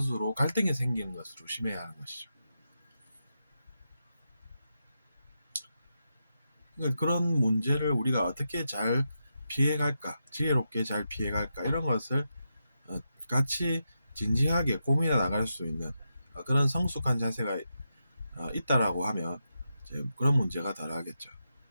갈등이 생기는 것을 조심해야 하는 것이죠. 그러니까 그런 문제를 우리가 어떻게 잘 피해갈까, 지혜롭게 잘 피해갈까 이런 것을 같이 진지하게 고민해 나갈 수 있는 그런 성숙한 자세가 있다라고 하면 이제 그런 문제가 덜하겠죠.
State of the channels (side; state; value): both; inverted; correlation -0.86